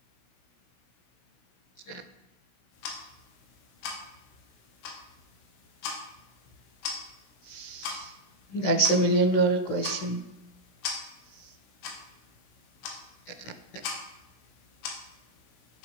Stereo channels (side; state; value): right; late; 16 ms